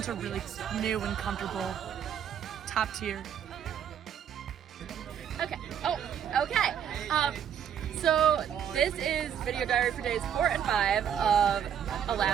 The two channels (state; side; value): quieter; left; 8.8 dB